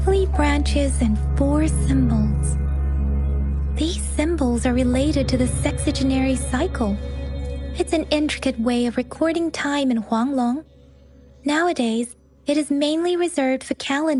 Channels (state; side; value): identical; both; correlation 1.00